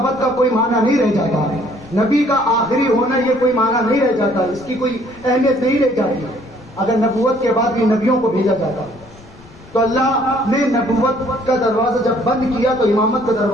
کا کوئی معنی نہیں رہ جاتا ہے. نبی کا آخری ہونا یہ کوئی معنی نہیں رہ جاتا, اس کی کوئی اہمیت نہیں رہ جاتی. اگر نبوت کے بعد بھی نبیوں کو بھیجا جاتا تو اللہ نے نبوت کا دروازہ جب بند کیا تو امامت کا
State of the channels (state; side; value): noise; left; rumble, 24 dB below the sound